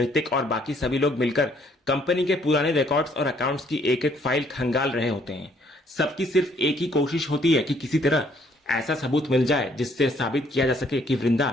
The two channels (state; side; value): normal; both; correlation 0.65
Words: और बाकी सभी लोग मिलकर कंपनी के पुराने रिकॉर्ड्स और अकाउंट्स की एक एक फाइल खंगाल रहे होते हैं। सबकी सिर्फ एक ही कोशिश होती है कि किसी तरह ऐसा सबूत मिल जाए जिससे साबित किया जा सके कि